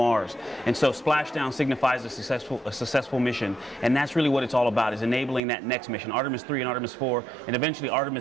And so splashdown signifies a successful mission. And that's really what it's all about, is enabling that next mission, Artemis 3 and Artemis 4, and eventually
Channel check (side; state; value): left; drops out; at 5.4 s